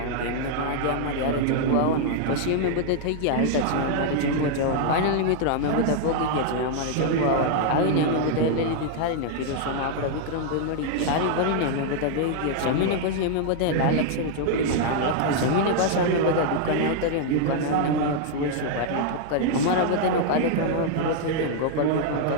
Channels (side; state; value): both; different; correlation -0.01